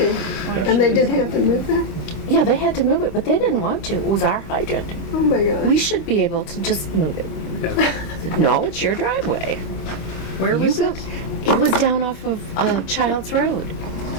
And they did have to move that? Yeah, they had to move it, but they didn't want to. It was our hydrant. Oh my God. We should be able to just move it. yeah. No, it's your driveway. Where You was built, it? it was down off of Childs Road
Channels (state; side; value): late; right; 25 ms